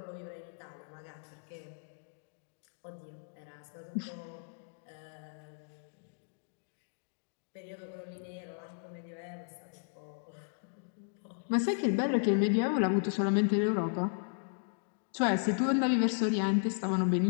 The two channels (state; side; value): silent; right; digital silence